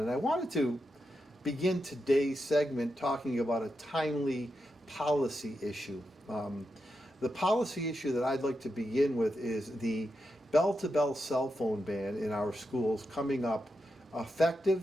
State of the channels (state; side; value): normal; both; correlation 0.87